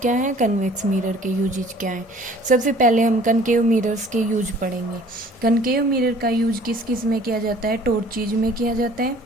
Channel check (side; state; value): both; normal; correlation 0.52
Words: क्या हैं, कन्वेक्स मिरर के यूजेज क्या हैं। सबसे पहले हम कनकेव मिरर्स के यूज पढ़ेंगे। कनकेव मिरर का यूज किस किस में किया जाता है, टॉर्चेज में किया जाता है,